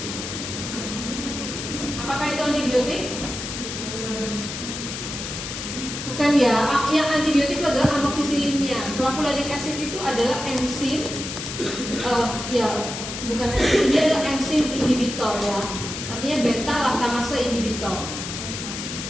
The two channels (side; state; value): left; noise; hiss, 7 dB below the sound